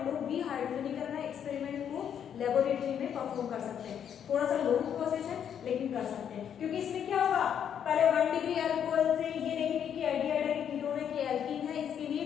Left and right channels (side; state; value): right; quieter; 8.7 dB